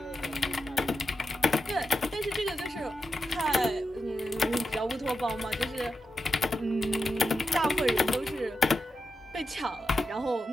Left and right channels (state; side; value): normal; both; correlation 0.88